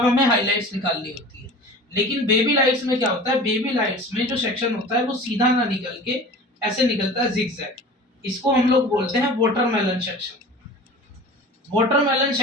हमें हाइलाइट्स निकालनी होती है। लेकिन बेबी लाइट्स में क्या होता है, बेबी लाइट्स में जो सेक्शन होता है वो सीधा ना निकल के ऐसे निकलता है जिगजैग। इसको हम लोग बोलते हैं वाटरमेलन सेक्शन। वाटरमेलन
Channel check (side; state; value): both; normal; correlation 0.39